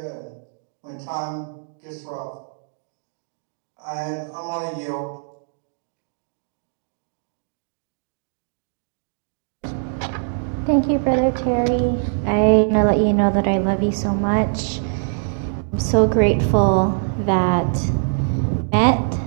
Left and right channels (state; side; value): silent; left; digital silence